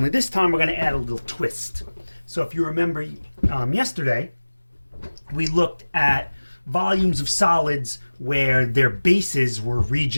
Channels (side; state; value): both; inverted; correlation -1.00